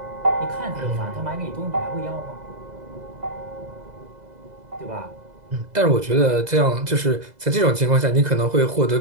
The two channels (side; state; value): left; late; 2.0 ms